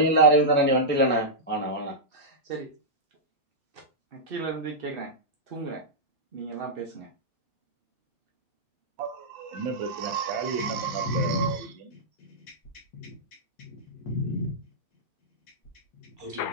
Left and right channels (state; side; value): normal; both; correlation -0.12